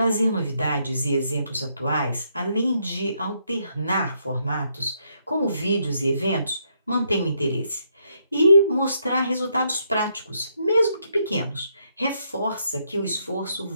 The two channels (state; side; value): inverted; both; correlation -0.75